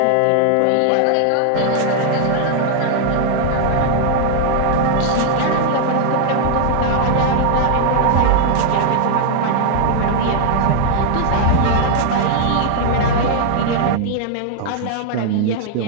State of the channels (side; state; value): both; different; correlation 0.00